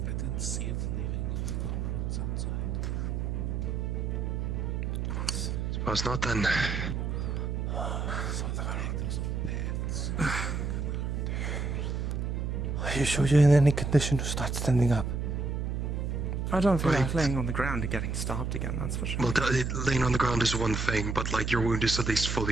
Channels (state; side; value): noise; right; hum, 1 dB below the sound